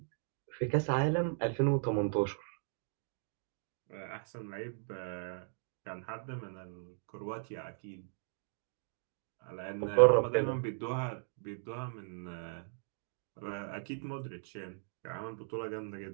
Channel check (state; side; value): silent; left; digital silence